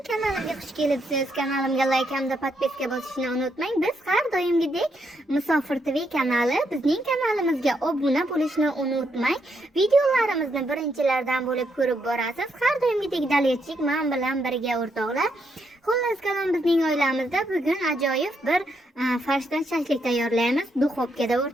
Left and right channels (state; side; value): normal; both; correlation 0.78